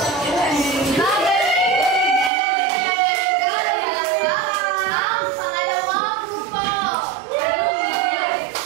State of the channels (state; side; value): drops out; left; at 2.3 s